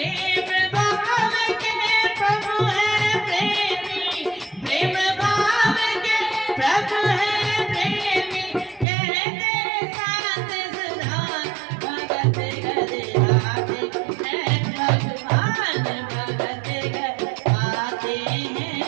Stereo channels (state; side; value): drops out; left; at 8.8 s